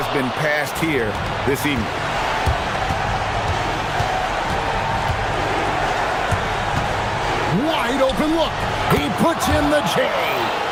been passed here this evening. Wide open look. He puts in the J.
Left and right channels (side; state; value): both; identical; correlation 1.00